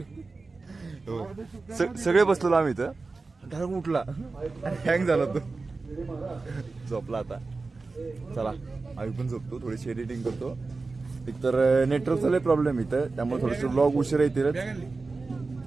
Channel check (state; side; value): quieter; left; 3.8 dB